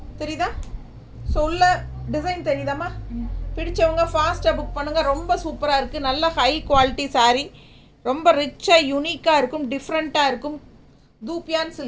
தெரியுதா? ஸோ உள்ள டிசைன் தெரியுதாம்மா? பிடிச்சவங்க ஃபாஸ்ட்டாக புக் பண்ணுங்கள். ரொம்ப சூப்பராக இருக்குது, நல்ல ஹை குவாலிட்டி சாரீ, ரொம்ப ரிச்சாக யூனிக்காக இருக்கும், டிஃப்ரெண்ட்டாக இருக்கும். தூப்பியான்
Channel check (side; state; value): both; identical; correlation 1.00